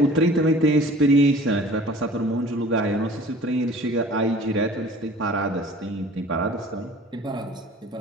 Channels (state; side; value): normal; both; correlation 0.47